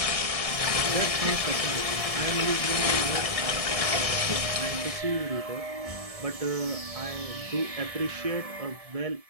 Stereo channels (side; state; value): left; late; 1.7 ms